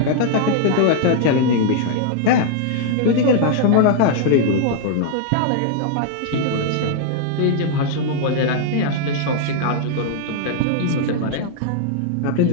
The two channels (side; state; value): both; different; correlation 0.00